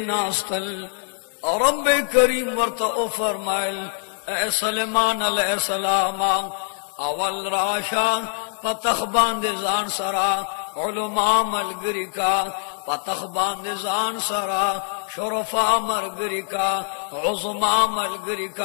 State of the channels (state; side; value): silent; right; digital silence